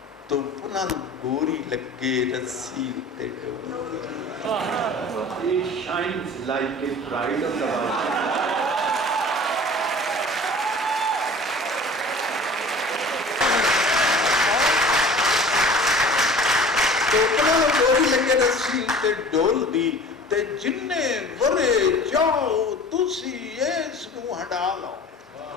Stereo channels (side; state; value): both; normal; correlation 0.42